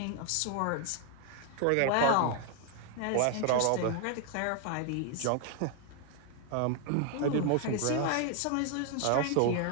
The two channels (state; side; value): different; both; correlation 0.00